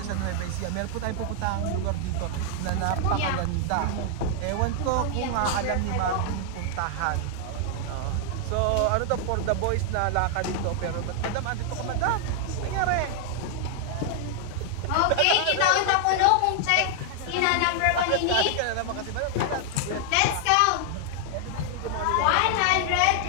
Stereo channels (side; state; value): both; different; correlation 0.00